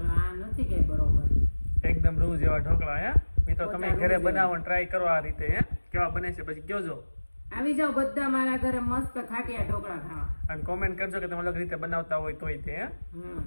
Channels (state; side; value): inverted; both; correlation -1.00